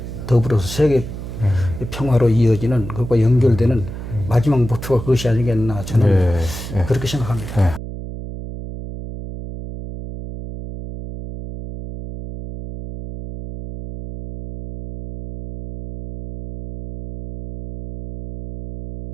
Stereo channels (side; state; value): right; noise; hum, 9 dB below the sound